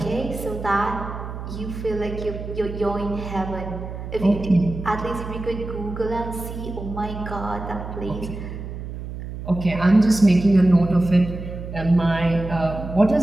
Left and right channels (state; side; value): noise; right; hum, 9 dB below the sound